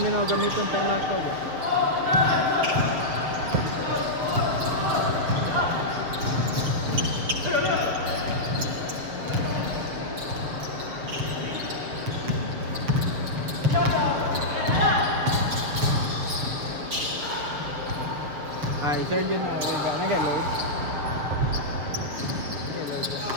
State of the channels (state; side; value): late; left; 7.5 ms